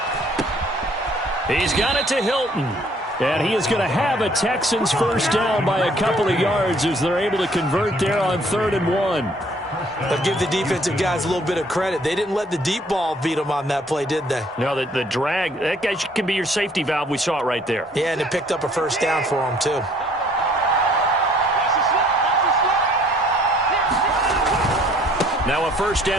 He's got it to Hilton. And he is going to have a Texans first down by a couple of yards as they're able to convert there on 3rd and 1. But give the defensive guys a little bit of credit. They didn't let the deep ball beat them on that play, did they? No, the drag, that guy can be your safety valve. We saw it right there. Yeah, and it picked up a first down for them, too. Now a first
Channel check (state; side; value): normal; both; correlation 0.60